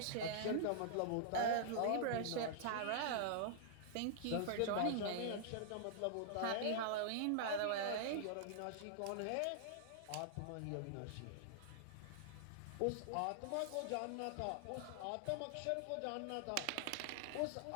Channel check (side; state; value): both; different; correlation -0.01